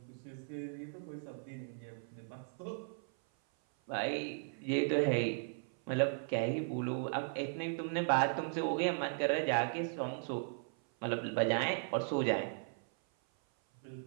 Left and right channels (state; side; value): silent; left; 53 dB below the other